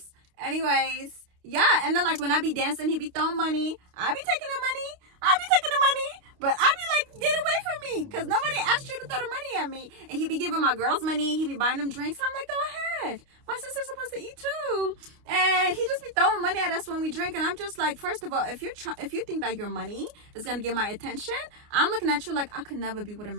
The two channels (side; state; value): left; late; 29 ms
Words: Anyways. Yeah, and then like when I be dancing, he be throwing money. I be taking the money. But I be like, get away from me. Because nobody asked you to throw the money at me. And he be giving my girls money. He be buying them drinks. I'm like, go ahead. My sister's supposed to eat too. And he just be throwing money at us when we drink. And I'm just like, first of all, if you think that your money is going to get my attention, I'm looking at you like I could never be with a